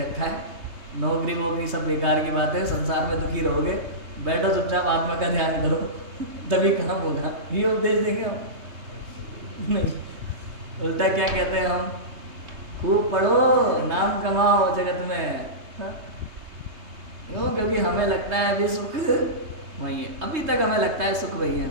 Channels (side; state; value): left; late; 3.2 ms